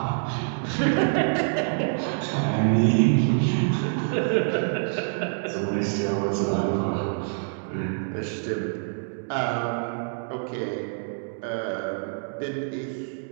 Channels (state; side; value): silent; left; digital silence